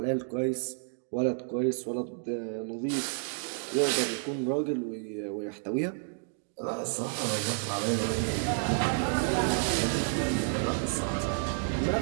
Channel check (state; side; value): silent; left; 58 dB below the other